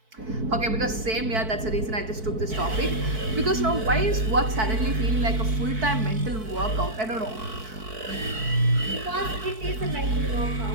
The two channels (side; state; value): left; late; 4.6 ms